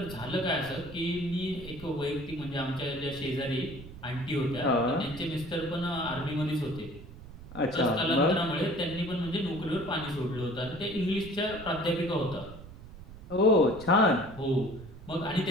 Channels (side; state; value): right; noise; rumble, 16 dB below the sound